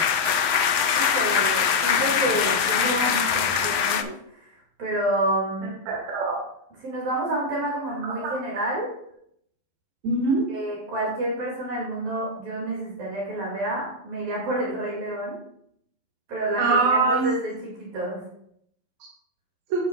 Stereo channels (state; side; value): late; left; 11 ms